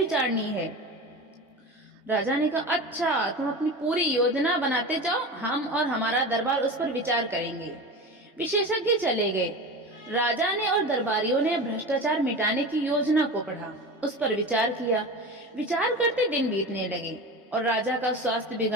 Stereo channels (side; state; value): both; normal; correlation 0.29